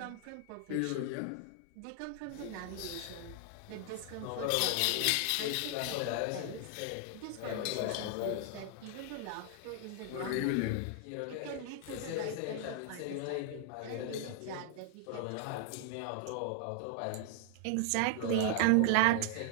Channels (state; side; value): different; both; correlation 0.00